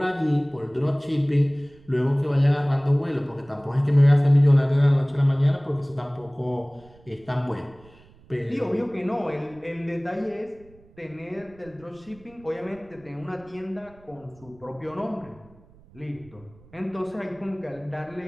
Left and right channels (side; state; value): right; noise; rumble, 26 dB below the sound